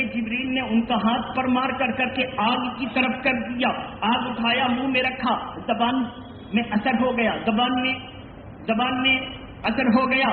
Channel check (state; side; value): identical; both; correlation 1.00